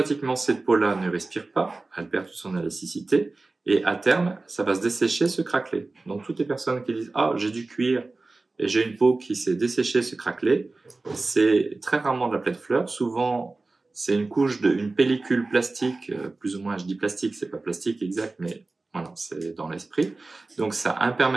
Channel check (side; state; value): left; quieter; 3.4 dB